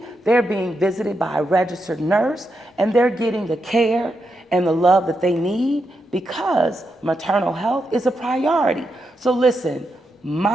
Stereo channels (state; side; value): normal; both; correlation 0.84